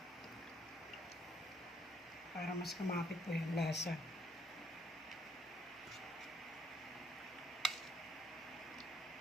Para mas kumapit po yung lasa.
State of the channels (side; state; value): both; normal; correlation 0.67